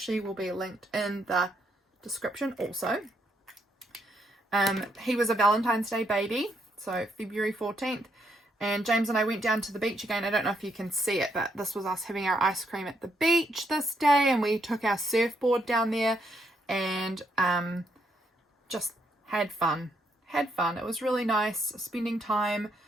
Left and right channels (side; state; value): both; normal; correlation 0.75